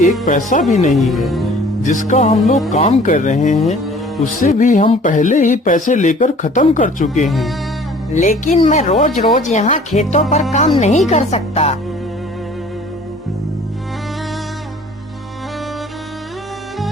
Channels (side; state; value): both; normal; correlation 0.51